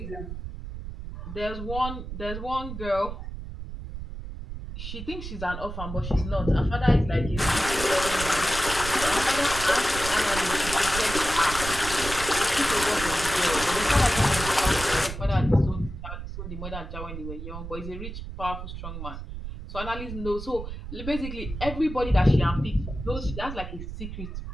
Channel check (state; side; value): noise; right; rumble, 8 dB below the sound